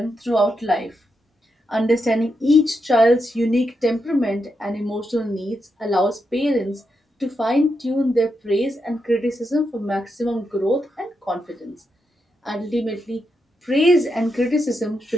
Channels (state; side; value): normal; both; correlation 0.84